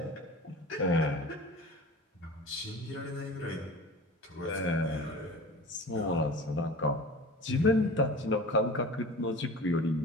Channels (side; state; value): both; normal; correlation 0.37